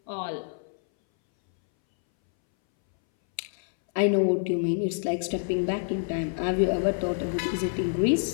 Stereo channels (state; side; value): silent; right; 60 dB below the other